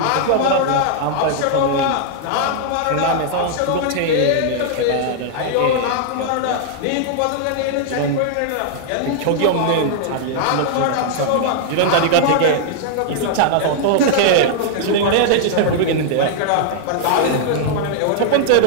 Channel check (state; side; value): different; both; correlation -0.01